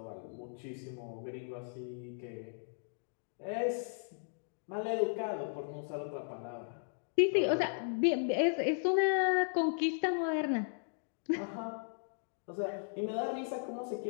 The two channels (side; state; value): right; silent; digital silence